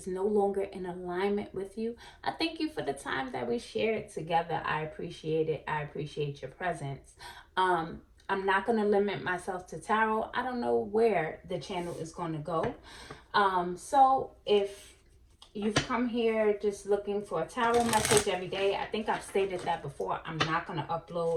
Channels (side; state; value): both; identical; correlation 1.00